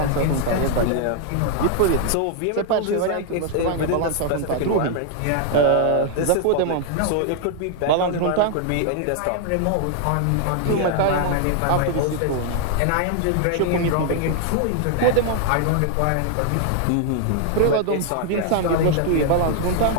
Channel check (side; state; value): both; different; correlation 0.00